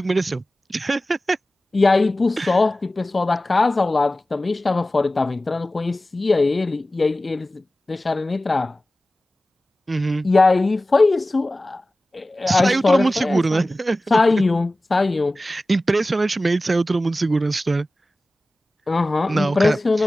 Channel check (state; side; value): normal; both; correlation 0.96